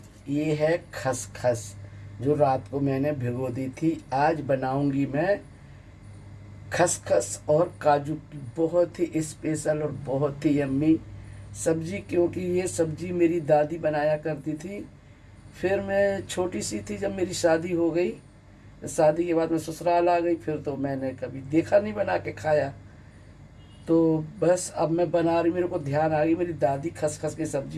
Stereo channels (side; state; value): both; identical; correlation 1.00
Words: ये है खसखस जो रात को मैंने भिगो दी थी। आज बनाऊंगी मैं खसखस और काजू की बहुत ही स्पेशल और बहुत ही यम्मी सब्जी, क्योंकि ये सब्जी मेरी दादी बनाया करती थी। फिर मैं छोटी सी थी जब मेरी शादी हो गई। शादी के बाद मैं ससुराल आ गई, फिर तो मैंने कभी देखा नहीं बना के खाया। तो बस अब मैं बना रही, मेरे को ध्यान आ गई मेरी दादी खसखस की